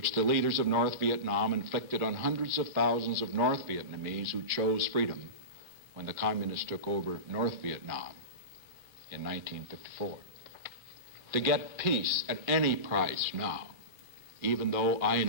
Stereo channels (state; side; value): late; left; 2.4 ms